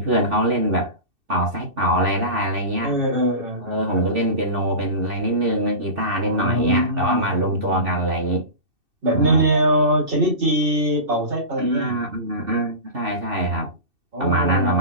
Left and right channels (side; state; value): left; late; 2.7 ms